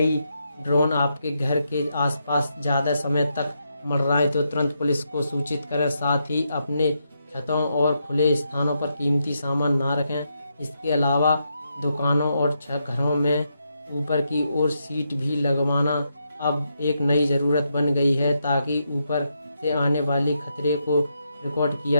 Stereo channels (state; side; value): inverted; both; correlation -0.81